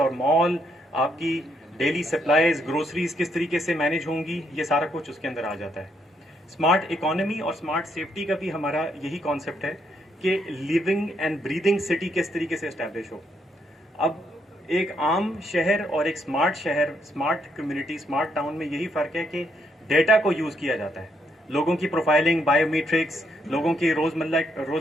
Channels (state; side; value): normal; both; correlation 0.75